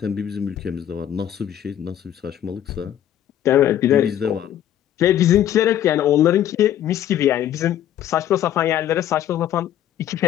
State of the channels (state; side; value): quieter; right; 11.1 dB